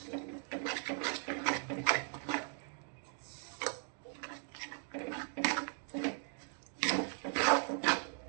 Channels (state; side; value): silent; left; 52 dB below the other